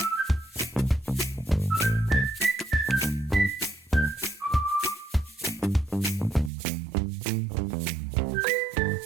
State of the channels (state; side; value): drops out; left; at 6.5 s